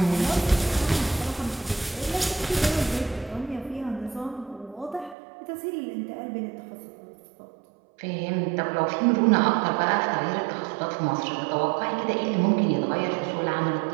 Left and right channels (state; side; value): drops out; left; at 5.2 s